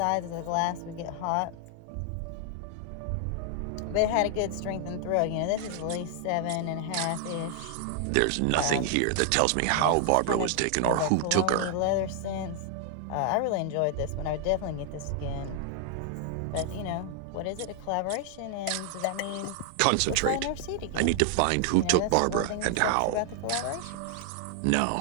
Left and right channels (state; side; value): different; both; correlation 0.00